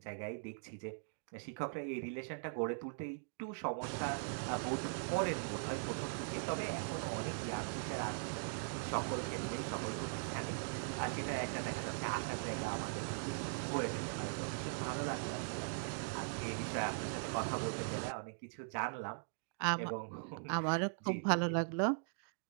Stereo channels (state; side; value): silent; left; digital silence